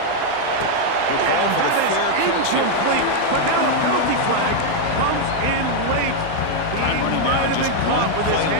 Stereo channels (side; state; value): both; different; correlation 0.00